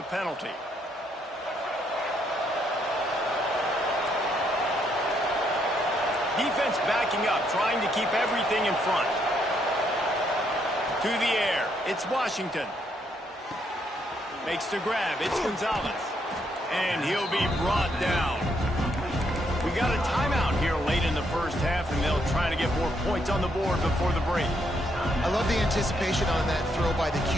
penalty. Defense backing up, trying to keep everything in front. To the air, it's Washington. Makes the grab, it's Gonzalez. And he'll be brought down. We got a timeout here late in the first half, and they'll try to get more points on the board before the break. I love the anticipation on that throw by the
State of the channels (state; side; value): normal; both; correlation 0.74